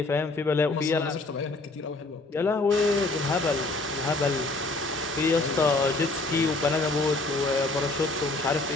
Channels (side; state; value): right; quieter; 3.0 dB